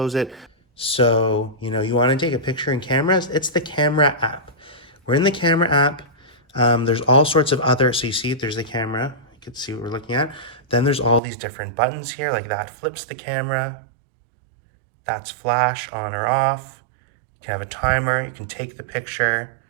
it. So, you want to take a picture in cameras, it's the camera app. We're in the camera app. There's all sorts of other, so you see there's the camera. You can see what we're looking at. Then there's all these different buttons here, like that flips the camera. That's flash on or off. You can have a timer, you can take the picture,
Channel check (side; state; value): left; drops out; at 11.2 s